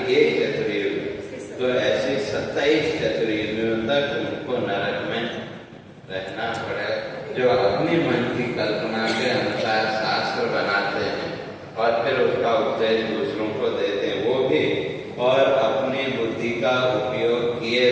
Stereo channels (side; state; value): both; identical; correlation 1.00